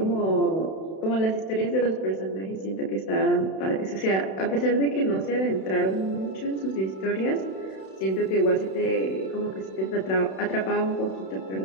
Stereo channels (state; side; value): late; right; 31 ms